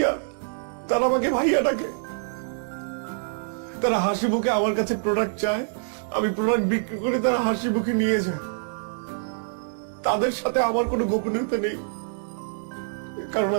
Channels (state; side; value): silent; left; digital silence